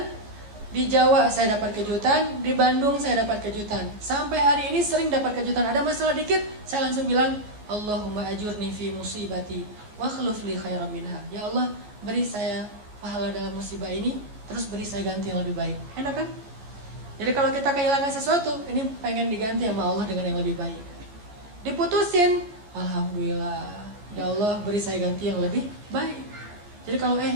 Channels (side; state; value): left; late; 14 ms